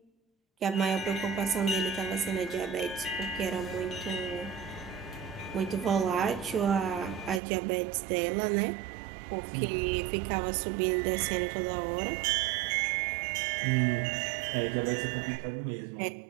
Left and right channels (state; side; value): drops out; left; at 7.4 s